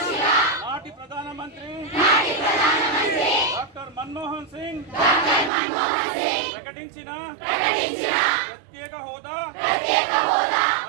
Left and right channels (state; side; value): drops out; left; at 5.5 s